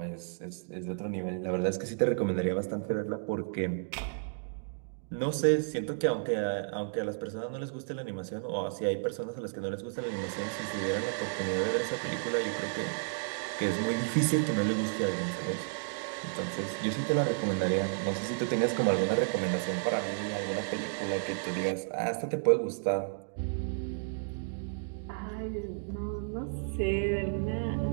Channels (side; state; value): left; silent; digital silence